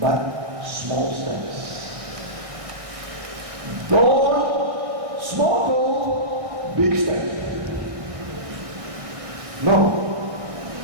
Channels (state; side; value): late; left; 1.6 ms